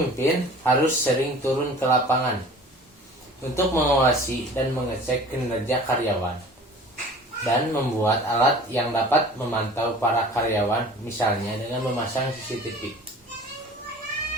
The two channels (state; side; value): normal; both; correlation 0.44